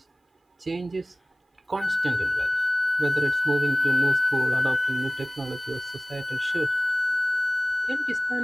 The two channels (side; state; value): both; normal; correlation 0.98